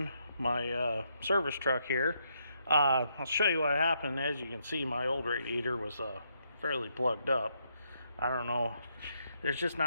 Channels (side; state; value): both; inverted; correlation -0.76